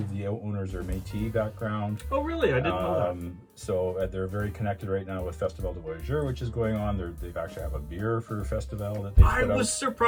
the owners are Métis background. Oh, really? I didn't know that. So they're very connected right now with Festival de Voyageurs, which is going on. They've actually have a beer for Festival that they I put was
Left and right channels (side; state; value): both; identical; correlation 1.00